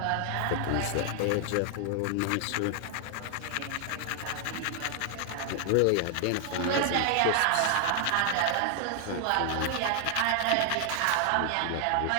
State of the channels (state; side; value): different; both; correlation 0.00